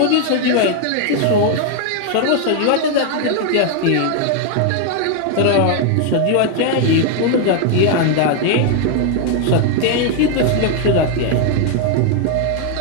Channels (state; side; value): different; both; correlation 0.00